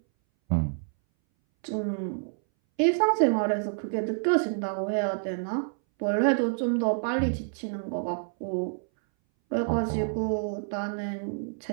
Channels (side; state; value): left; silent; 59 dB below the other